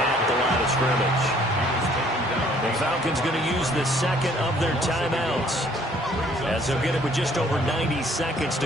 at the line of scrimmage. The Falcons going to use the second of their timeouts, as they'll get it with just over 90 seconds to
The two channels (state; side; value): normal; both; correlation 0.60